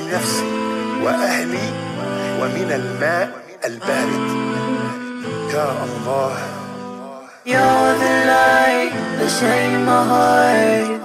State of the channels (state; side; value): identical; both; correlation 1.00